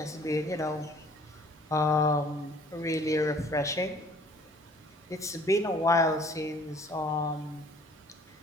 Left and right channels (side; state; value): both; normal; correlation 0.55